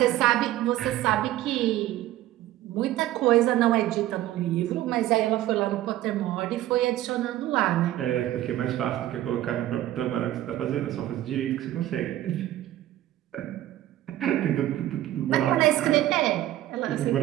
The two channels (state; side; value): quieter; left; 14.2 dB